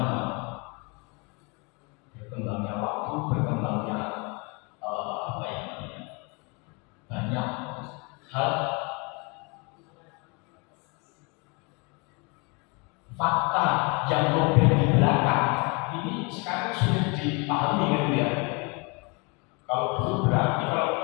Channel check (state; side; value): quieter; right; 30.7 dB